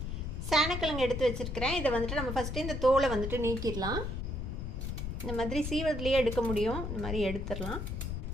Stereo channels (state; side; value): noise; left; rumble, 4 dB below the sound